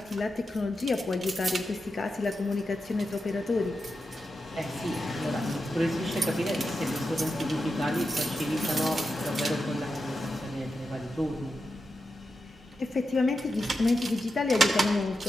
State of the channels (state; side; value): normal; both; correlation 0.88